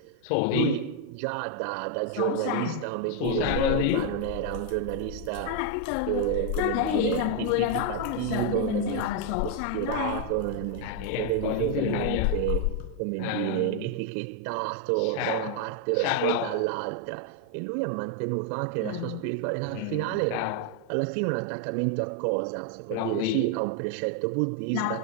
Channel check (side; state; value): both; different; correlation 0.01